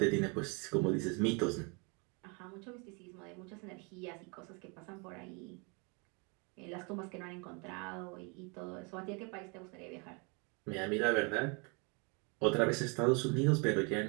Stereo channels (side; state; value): left; quieter; 32.5 dB